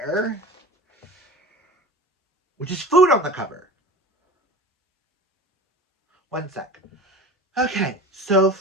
which is food on the cover. One sec. Okay, so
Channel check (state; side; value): normal; both; correlation 0.35